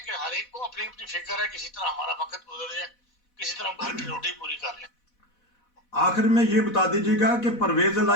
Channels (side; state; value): right; late; 4.1 ms